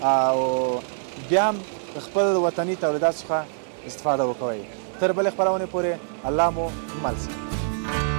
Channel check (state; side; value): silent; left; 62 dB below the other